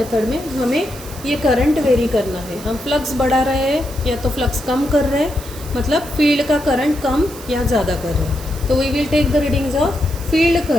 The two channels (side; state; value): right; noise; hiss, 16 dB below the sound